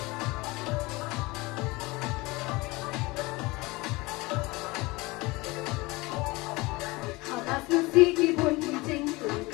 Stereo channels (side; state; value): right; quieter; 23.1 dB